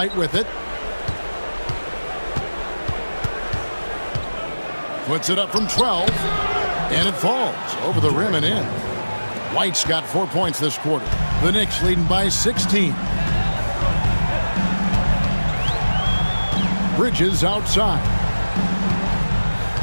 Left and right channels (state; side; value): inverted; both; correlation -1.00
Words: with it. Puts it up from 12. And it falls over the rim and in. White's got 4 points this quarter. The Knicks leading by 16. Bridges outside.